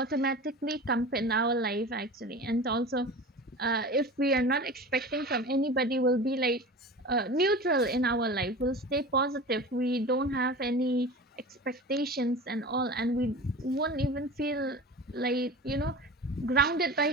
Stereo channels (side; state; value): both; normal; correlation 0.35